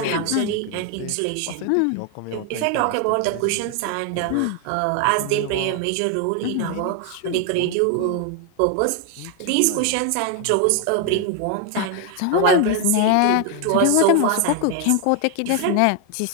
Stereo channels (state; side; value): different; both; correlation 0.01